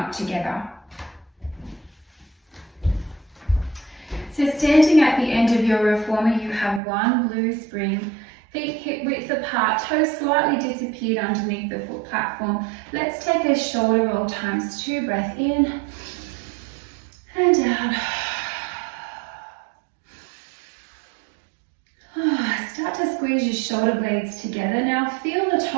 together. So standing at the end of your reformer, you have one blue spring, feet hip width apart, toes slightly disappeared underneath the foot platform. Let's take a shoulder roll times 2, breath in and out. Start to squeeze your shoulder blades together. Now feel the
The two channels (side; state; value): left; drops out; at 6.8 s